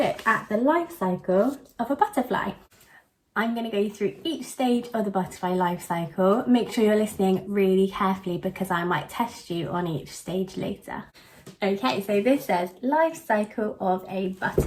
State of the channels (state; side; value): identical; both; correlation 1.00